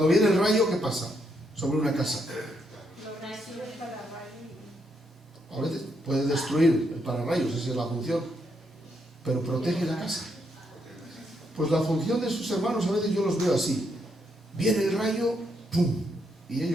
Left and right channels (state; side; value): normal; both; correlation 0.77